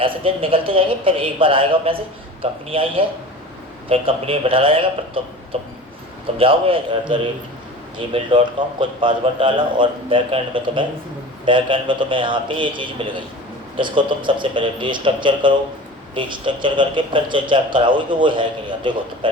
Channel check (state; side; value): normal; both; correlation 0.37